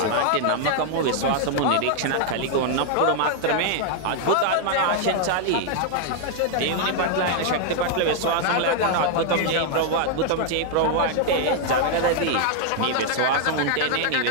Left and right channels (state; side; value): different; both; correlation 0.00